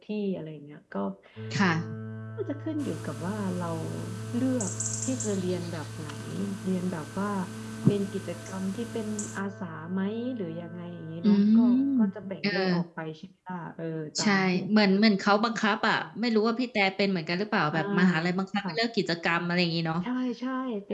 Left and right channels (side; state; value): both; identical; correlation 1.00